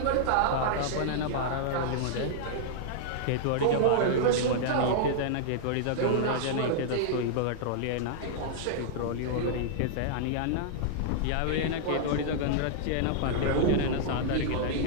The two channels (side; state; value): both; different; correlation -0.01